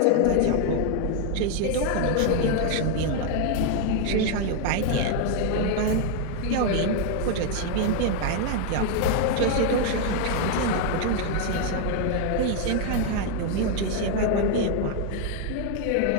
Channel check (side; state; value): both; different; correlation 0.00